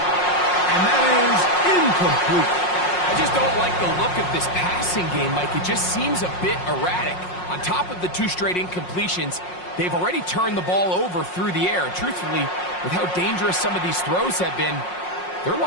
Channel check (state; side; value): late; right; 5.5 ms